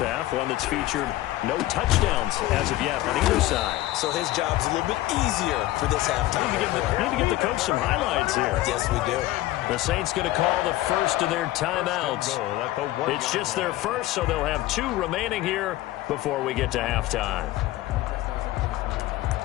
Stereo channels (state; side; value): quieter; right; 16.2 dB